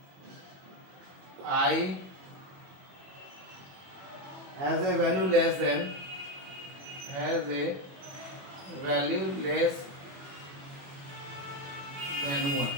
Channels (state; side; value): late; left; 21 ms